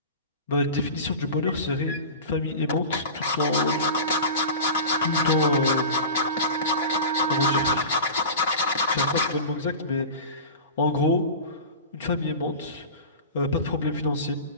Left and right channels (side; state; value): both; inverted; correlation -0.32